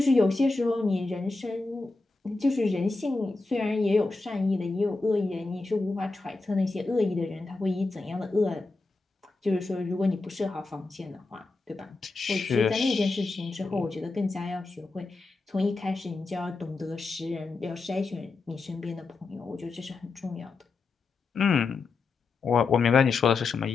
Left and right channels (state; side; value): quieter; right; 3.7 dB